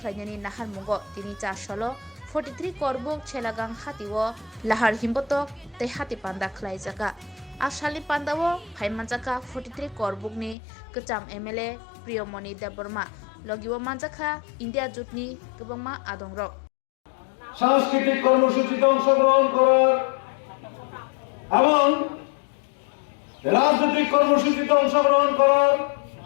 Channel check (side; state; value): right; drops out; at 10.6 s